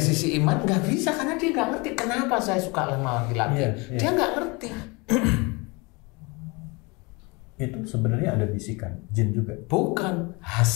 iman nggak bisa karena dia nggak ngerti kenapa saya suka sama laki-laki. Dia nggak ngerti. Itu sebenarnya ada bisikan jin juga. Bukan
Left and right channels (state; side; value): quieter; right; 27.3 dB